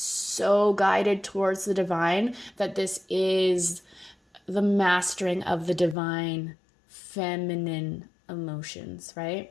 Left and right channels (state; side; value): drops out; right; at 6.0 s